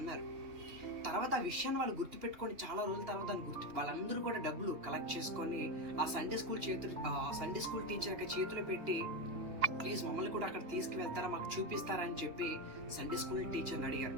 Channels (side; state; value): left; late; 2.9 ms